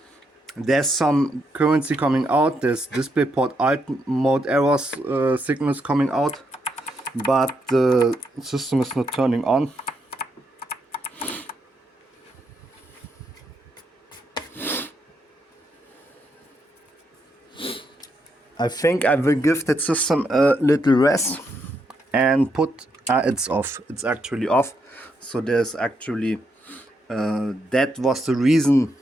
There's some currency coming out. There's DisplayPort alt mode errors signals coming out. But the system is not turning on. I think I will give that system a little rest and put... it's off. It's actually off. So there's actually... that was the reason,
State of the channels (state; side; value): normal; both; correlation 0.79